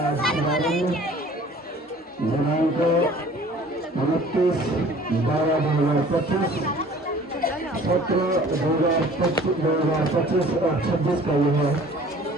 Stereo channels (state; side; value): normal; both; correlation 0.50